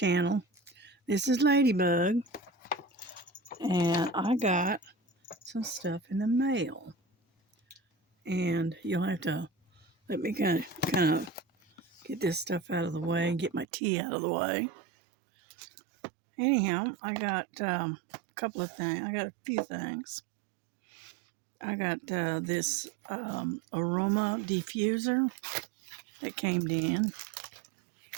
This is Ladybug, and I got some stuff in the mail, and you'll have to let me kind of get this stuff out of the way and get my tea out of the way. Anyhow, I got a couple of things. I got a few things. I got this aroma diffuser that came in,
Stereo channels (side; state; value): left; drops out; at 13.7 s